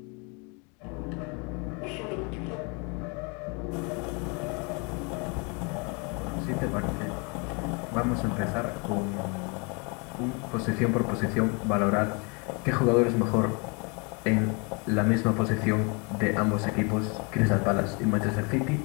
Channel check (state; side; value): quieter; right; 32.4 dB